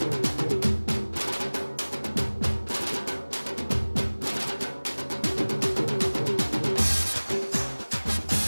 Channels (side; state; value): both; inverted; correlation -1.00